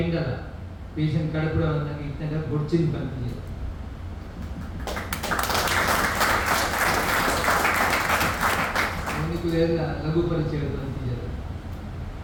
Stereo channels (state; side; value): identical; both; correlation 1.00